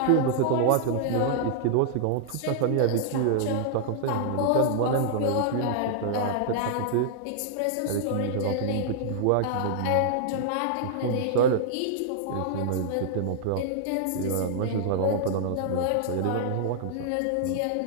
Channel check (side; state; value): both; different; correlation -0.01